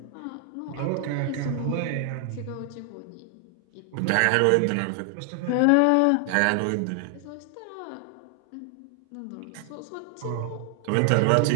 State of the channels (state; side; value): different; both; correlation 0.00